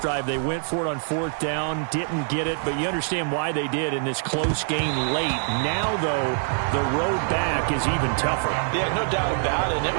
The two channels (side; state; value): left; silent; 62 dB below the other